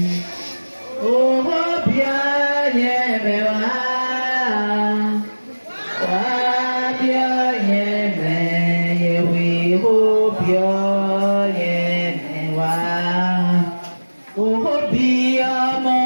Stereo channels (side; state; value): both; inverted; correlation -1.00